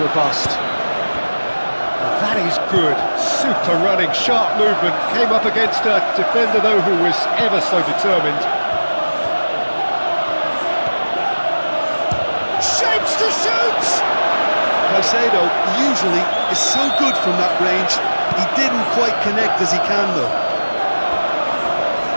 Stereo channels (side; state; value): both; inverted; correlation -1.00